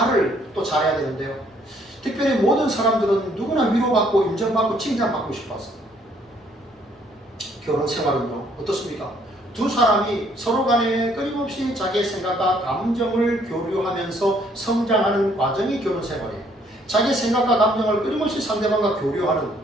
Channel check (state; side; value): normal; both; correlation 0.65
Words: 또 잘해야 되는데요. 특별히 모든 사람들은 누구나 위로받고 인정받고 칭찬받고 싶어서. 결혼 생활은요, 어떻습니까? 두 사람이 서로 간에 끊임없이 자기의 생각과 감정을 교류하면서 성장하는 과정이 결혼 생활이에요. 자기의 생각과 감정을 끊임없이 상대방과 교류하는,